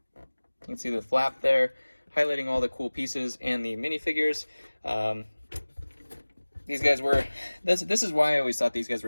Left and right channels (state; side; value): inverted; both; correlation -1.00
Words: You can see the flap there, highlighting all the cool pieces and the minifigures. These guys were, this is why I always thought these guys